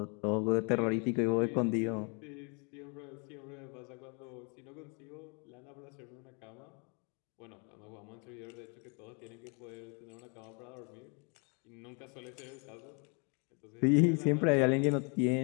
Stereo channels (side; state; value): right; quieter; 35.1 dB